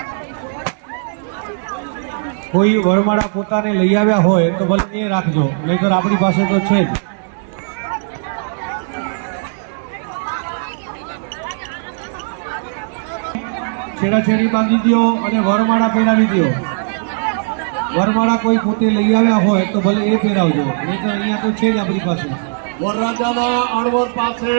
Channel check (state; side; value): silent; left; digital silence